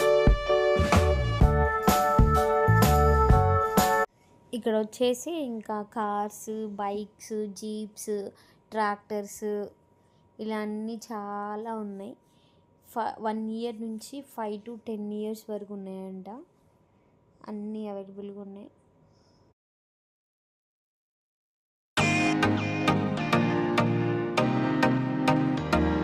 ఇక్కడ వచ్చేసి ఇంకా కార్స్, బైక్స్, జీప్స్, ట్రాక్టర్స్ ఇలా అన్నీ చాలా ఉన్నాయి. 1 year నుంచి 5 to 10 years వరకు ఉన్నాయంట. అన్నీ అవైలబుల్గా ఉన్నాయి.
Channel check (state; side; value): identical; both; correlation 1.00